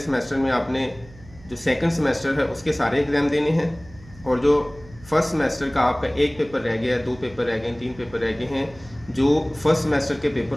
में आपने जो सेकंड सेमेस्टर है उसके सारे एग्ज़ाम देने हैं। और जो फर्स्ट सेमेस्टर का आपका एक पेपर रह गया, दो पेपर रह गए, तीन पेपर रह गए हैं, जो फर्स्ट सेमेस्टर के पेपर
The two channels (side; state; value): right; noise; hum, 21 dB below the sound